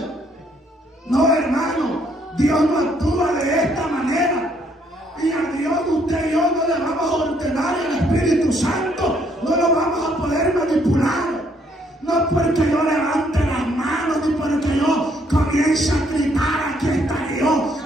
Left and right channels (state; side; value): normal; both; correlation 0.69